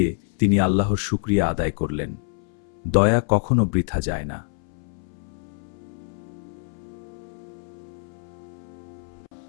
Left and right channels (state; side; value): silent; right; 61 dB below the other